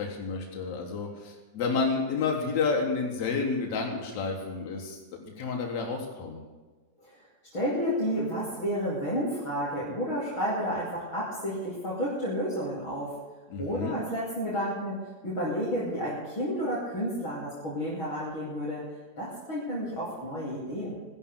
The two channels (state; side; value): late; right; 6.3 ms